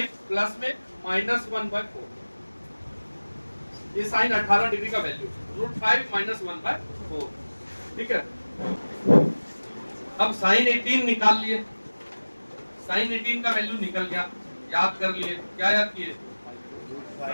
प्लस में माइनस 1 बाय 4, ये साइन 18 डिग्री का वैल्यू, रूट 5 माइनस 1 बाय 4, ठीक है। अब साइन 18 निकाल लिए, साइन 18 का वैल्यू निकल गया, याद कर लिए, क्या याद किए,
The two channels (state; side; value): inverted; both; correlation -1.00